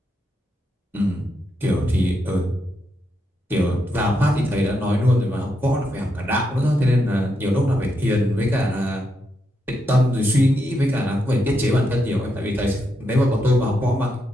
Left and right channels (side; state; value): both; normal; correlation 0.82